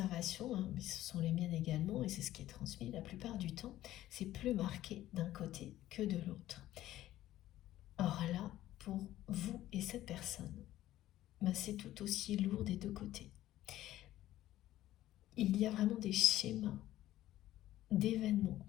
hein, mais ce sont les miennes également, et c'est ce qui est transmis la plupart du temps, c'est plus marqué d'un côté que de l'autre. Or là, pour vous et cette personne, ben c'est tout aussi lourd des deux côtés. Il y a vraiment des schémas d'événements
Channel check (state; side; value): quieter; right; 14.2 dB